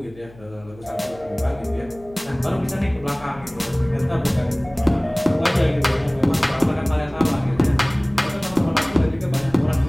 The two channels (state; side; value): noise; left; hum, 22 dB below the sound